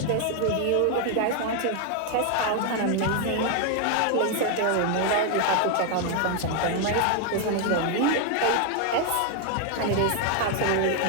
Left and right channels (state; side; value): different; both; correlation 0.01